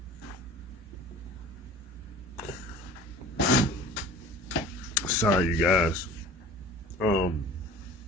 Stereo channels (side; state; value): both; normal; correlation 0.43